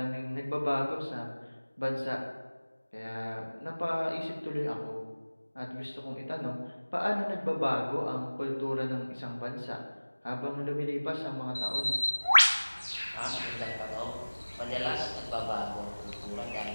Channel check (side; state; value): both; inverted; correlation -1.00